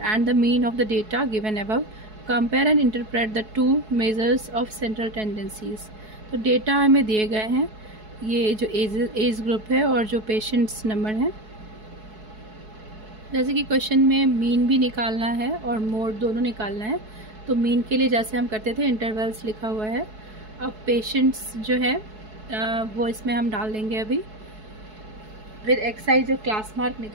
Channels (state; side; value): late; left; 4.7 ms